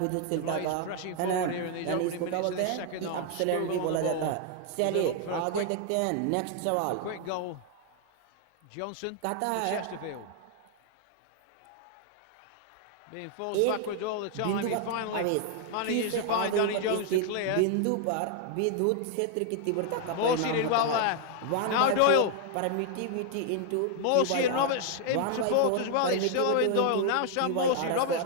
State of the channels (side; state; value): both; different; correlation 0.00